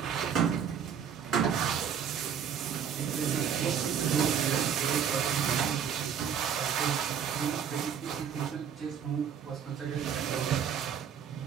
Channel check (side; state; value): left; quieter; 7.9 dB